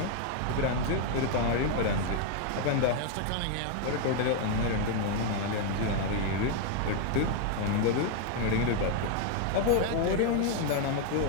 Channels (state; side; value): different; both; correlation 0.00